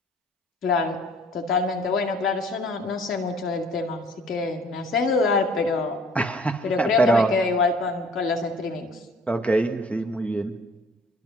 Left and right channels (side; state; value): both; normal; correlation 0.54